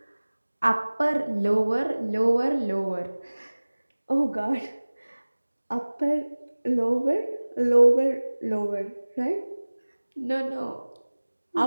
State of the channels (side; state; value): both; inverted; correlation -1.00